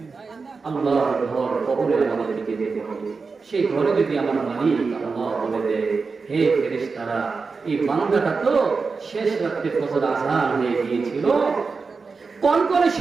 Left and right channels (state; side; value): quieter; left; 4.6 dB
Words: আল্লাহর ঘর, কবরে আমাদেরকে যেতে হবে। সেই ঘরে যদি আমার মালিক আল্লাহ বলে দেয়, হে ফেরেশতারা, এই বান্দাটা তো শেষ রাত্রে ফজর আযান হয়ে গিয়েছিল, কনকনে